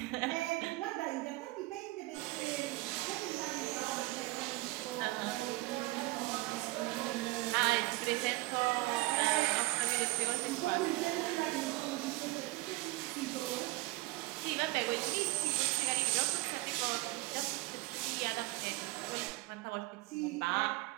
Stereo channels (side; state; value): left; quieter; 20.7 dB